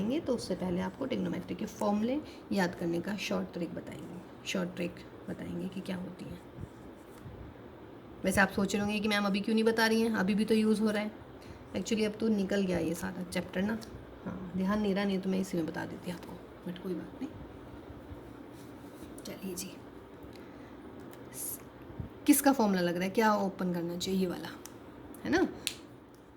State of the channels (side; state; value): both; identical; correlation 1.00